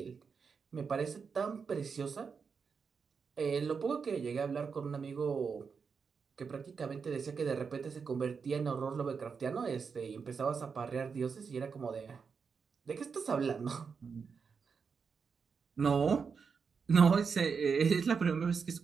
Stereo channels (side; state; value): left; quieter; 5.7 dB